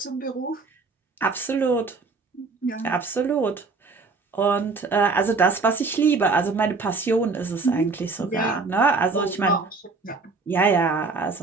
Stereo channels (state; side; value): quieter; left; 4.1 dB